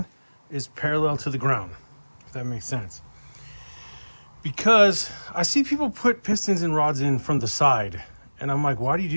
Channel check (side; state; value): both; inverted; correlation -1.00